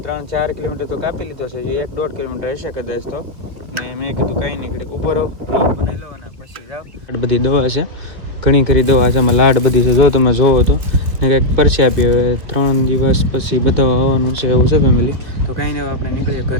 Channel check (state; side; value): late; left; 2.3 ms